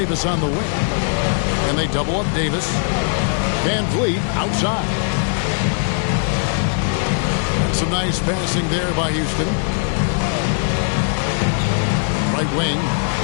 on the wing. And they double up Davis. VanVleet outside. And some nice passing there by Houston. Right wing.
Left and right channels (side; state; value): right; silent; 65 dB below the other